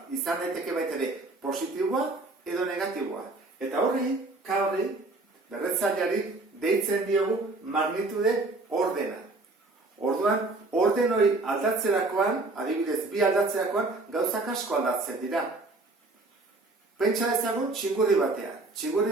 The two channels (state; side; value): quieter; left; 3.2 dB